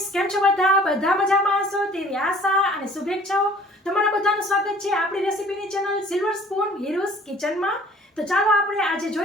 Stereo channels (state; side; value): normal; both; correlation 0.52